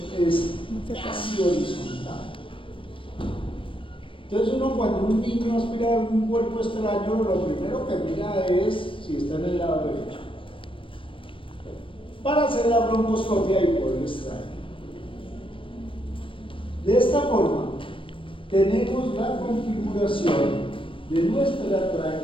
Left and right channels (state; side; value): late; right; 0.25 ms